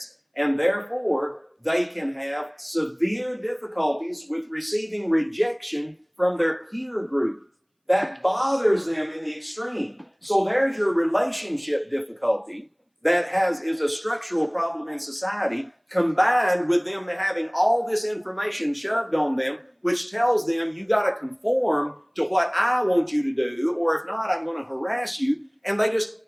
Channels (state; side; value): identical; both; correlation 1.00